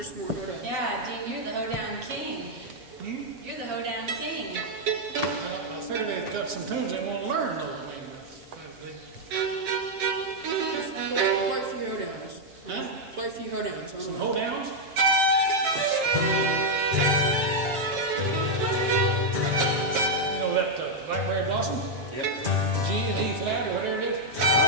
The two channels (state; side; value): late; left; 7.5 ms